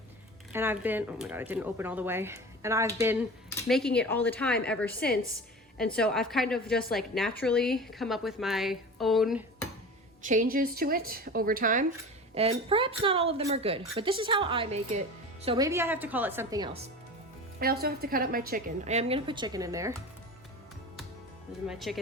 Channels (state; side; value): normal; both; correlation 0.34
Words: And I've been, oh my God, it didn't open all the way. And I've been making it all the time ever since. And so I've kind of just like naturally come up with my own changes to it over time. And perhaps not all of them are good, but this is how I make it. So maybe I have to call it something else. I also have to cut up my chicken. I am gonna put chicken in there. Those are my